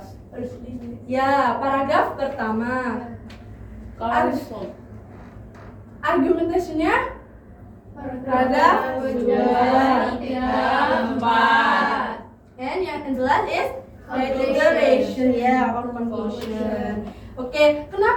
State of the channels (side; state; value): both; identical; correlation 1.00